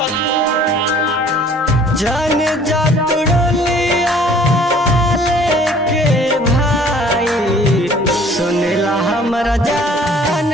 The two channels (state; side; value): normal; both; correlation 0.53